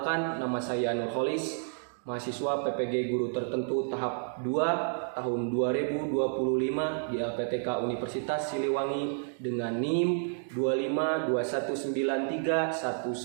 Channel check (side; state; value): left; silent; digital silence